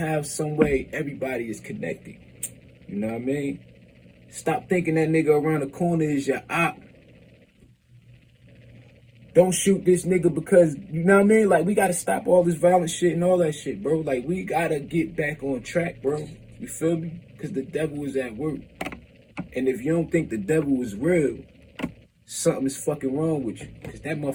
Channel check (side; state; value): both; identical; correlation 1.00